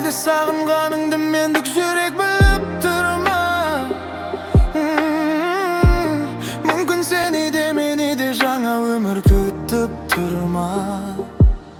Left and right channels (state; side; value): identical; both; correlation 1.00